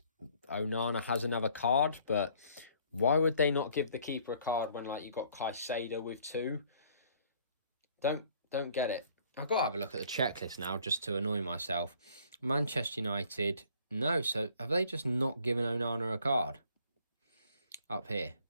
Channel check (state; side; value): inverted; both; correlation -0.59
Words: Onana has another card, but why would they not give the keeper a card when you got Caicedo with 2? Don't get it. I've got to have a look at the checklist now just to annoy myself. Manchester United, no. So have they just not given Onana a card up here?